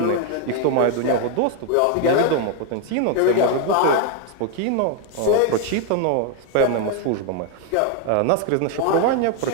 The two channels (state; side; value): different; both; correlation 0.01